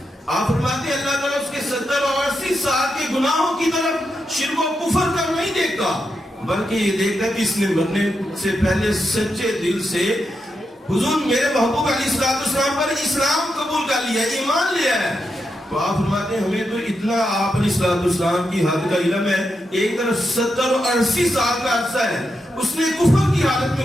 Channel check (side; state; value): both; normal; correlation 0.85